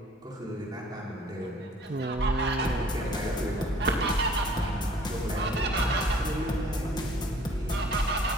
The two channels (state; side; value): normal; both; correlation 0.55